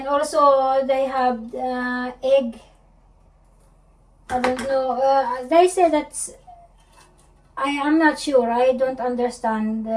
also they have egg. I don't know. They say that's. I am not sure. I don't understand.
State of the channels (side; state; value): both; identical; correlation 1.00